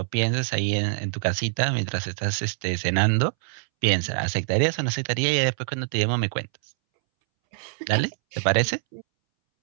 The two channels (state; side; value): silent; left; 62 dB below the other